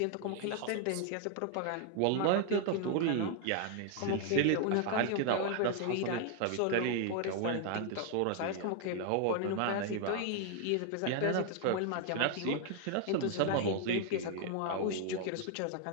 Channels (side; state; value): both; different; correlation 0.00